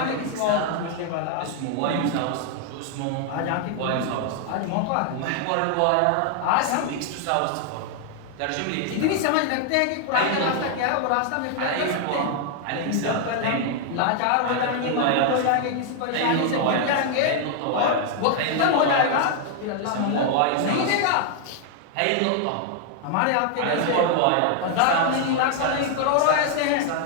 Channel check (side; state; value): both; different; correlation 0.00